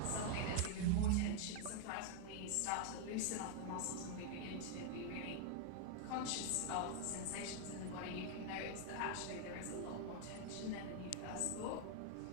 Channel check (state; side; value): different; both; correlation 0.00